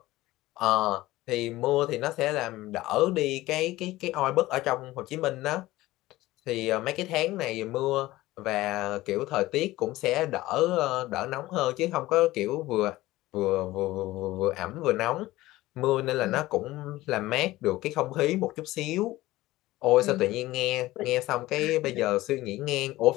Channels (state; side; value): quieter; right; 17.5 dB